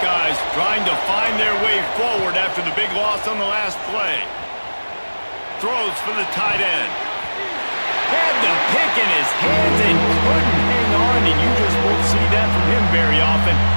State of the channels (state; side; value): inverted; both; correlation -1.00